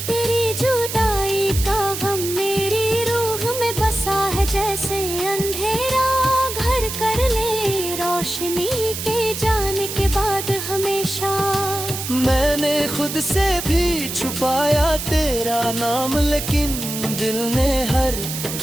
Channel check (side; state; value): right; noise; hiss, 6 dB below the sound